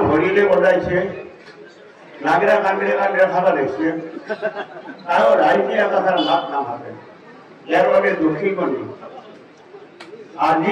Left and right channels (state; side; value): identical; both; correlation 1.00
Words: ভৰিলে বজাইছে, নাগৰা কান্দিৰে কান্দিৰে খাবা লাগিছে, আৰু ৰাইজে একাষাৰ মাত নামাতে। ইয়াৰ বাবে দুখী কৰি